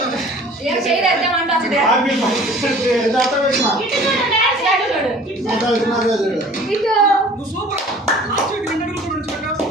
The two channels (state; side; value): normal; both; correlation 0.48